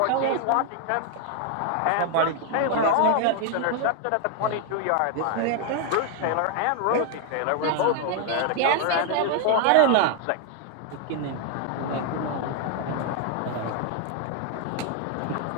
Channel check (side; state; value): both; different; correlation 0.00